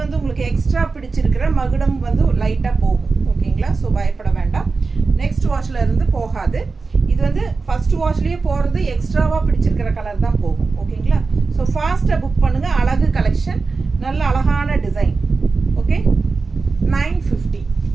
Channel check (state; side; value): quieter; left; 4.2 dB